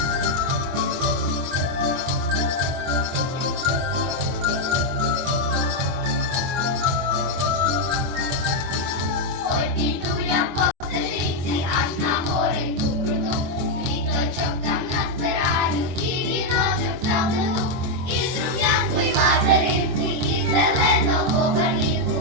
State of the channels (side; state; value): left; late; 24 ms